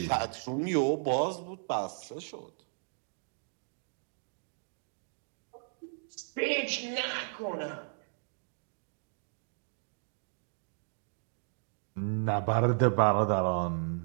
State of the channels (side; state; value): left; silent; digital silence